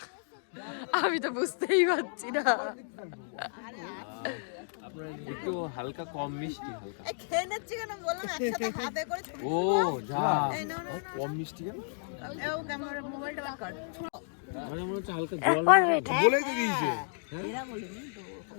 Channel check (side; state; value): right; silent; digital silence